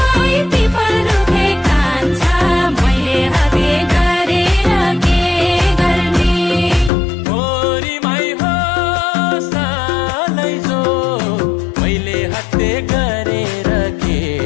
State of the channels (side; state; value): right; drops out; at 6.9 s